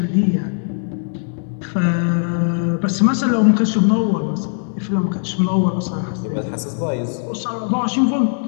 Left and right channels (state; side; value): silent; right; digital silence